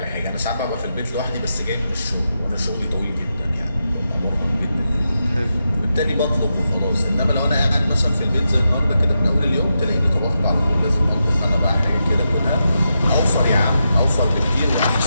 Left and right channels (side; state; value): both; inverted; correlation -0.87